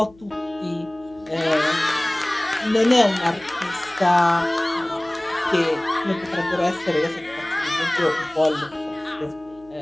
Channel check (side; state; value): left; noise; hum, 27 dB below the sound